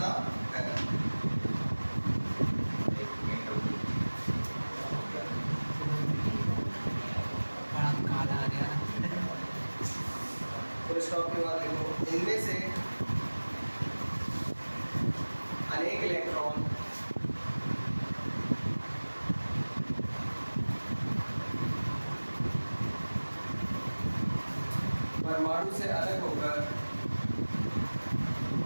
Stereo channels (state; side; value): inverted; both; correlation -1.00